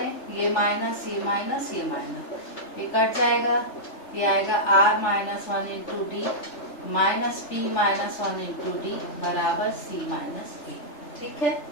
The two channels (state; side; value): late; right; 3.3 ms